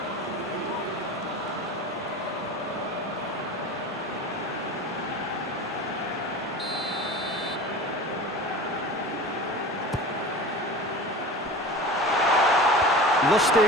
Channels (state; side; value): normal; both; correlation 0.34